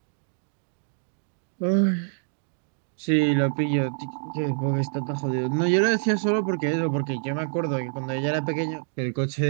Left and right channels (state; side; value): silent; left; digital silence